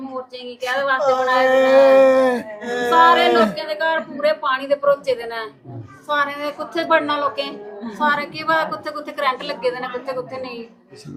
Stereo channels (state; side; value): identical; both; correlation 1.00